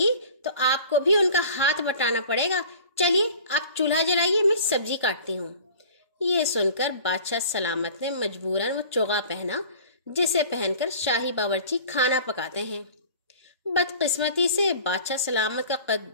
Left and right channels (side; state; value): both; inverted; correlation -0.43